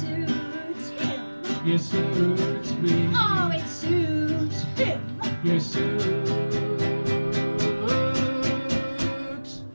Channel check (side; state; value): both; inverted; correlation -1.00